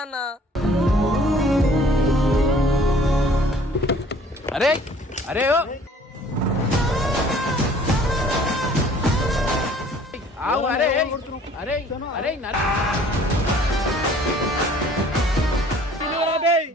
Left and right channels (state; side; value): normal; both; correlation 0.54